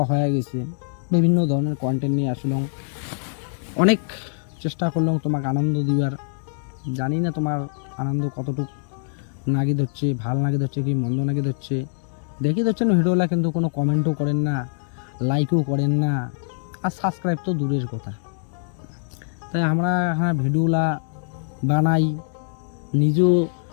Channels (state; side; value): silent; right; 63 dB below the other